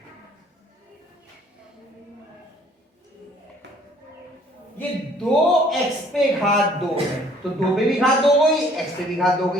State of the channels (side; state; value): both; normal; correlation 0.58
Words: ये 2x पे घात 2 है, तो 2 पे भी घात 2 गई, x पे भी घात 2